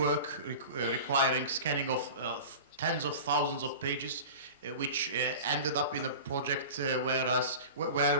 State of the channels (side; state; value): both; inverted; correlation -0.34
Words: requiring scanning of tens of thousands of pages, which ended up in a project